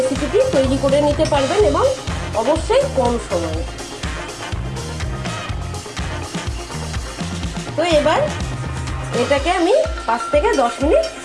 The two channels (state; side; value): identical; both; correlation 1.00